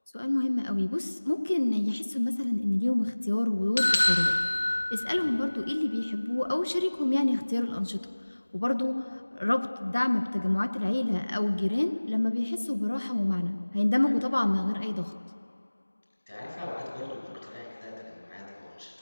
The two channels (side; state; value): both; inverted; correlation -1.00